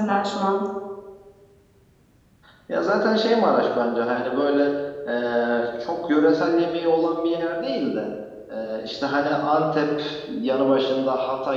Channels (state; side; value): identical; both; correlation 1.00